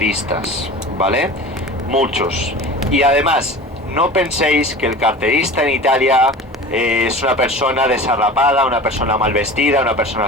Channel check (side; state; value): both; normal; correlation 0.37